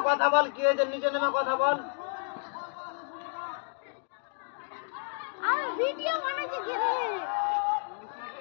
কথা বল কি হয়েছে নিচে নামে কথা বল আমি ভিডিও বানাচ্ছি কি রে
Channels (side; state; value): right; silent; 57 dB below the other